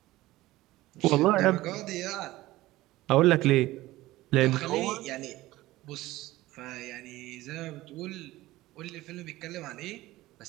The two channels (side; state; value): left; quieter; 17.5 dB